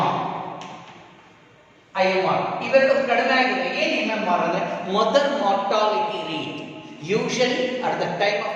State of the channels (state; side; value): identical; both; correlation 1.00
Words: ಇವೆರಡು ಕಡಿಮೆ ಆಗಿದೆ. ಏನು MMR ಅಂದ್ರೆ mother mortality rate. Usually at the time